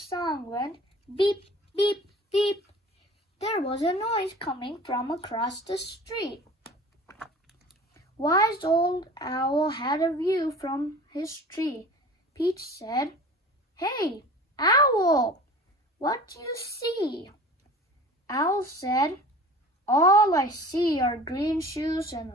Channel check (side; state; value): both; normal; correlation 0.42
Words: when beep, beep, beep. There was a noise coming from across the street. Wise old Owl had a view from his tree. Pete said, "Hey, Owl, what do you see?" Owl said, "All I see are green shoes and